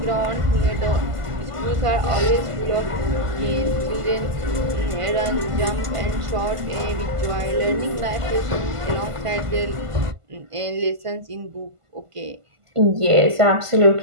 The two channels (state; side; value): late; left; 1.5 ms